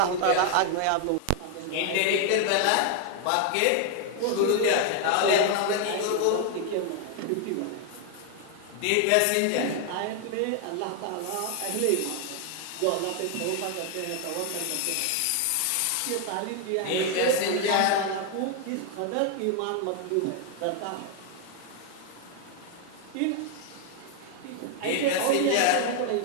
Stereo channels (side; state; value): both; different; correlation 0.00